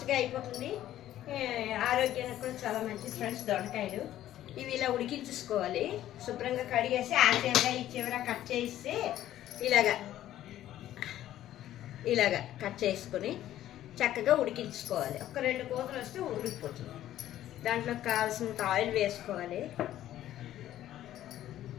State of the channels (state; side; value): quieter; right; 12.9 dB